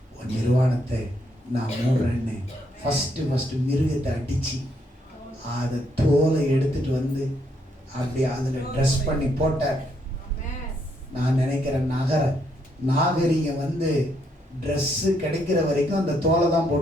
உன் நிர்வாணத்தை நான் மூடுறேன்னு ஃபர்ஸ்ட் மிருகத்தை அடிச்சு அதை தோலை எடுத்துட்டு வந்து அப்படியே அதில் ட்ரெஸ் பண்ணி போட்டார். நான் நினைக்கிறேன் நாகரிகம் வந்து ட்ரெஸ்ஸு கிடைக்கிற வரைக்கும் அந்த தோலை தான்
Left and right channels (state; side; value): normal; both; correlation 0.74